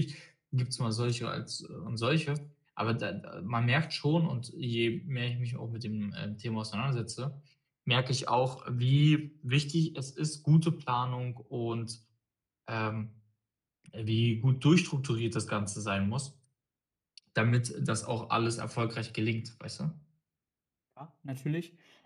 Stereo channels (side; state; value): both; identical; correlation 1.00